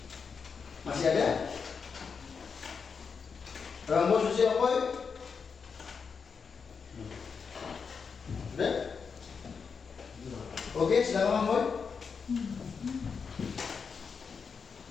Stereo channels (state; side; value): quieter; right; 5.7 dB